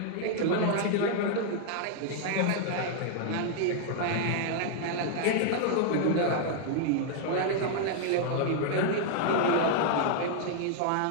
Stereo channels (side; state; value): both; different; correlation -0.01